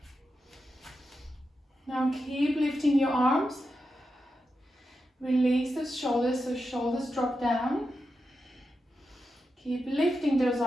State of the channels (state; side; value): normal; both; correlation 0.88